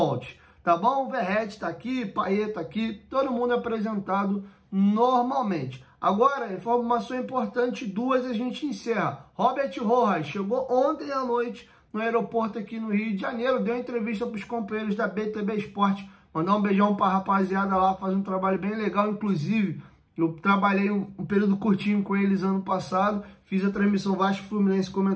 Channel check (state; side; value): identical; both; correlation 1.00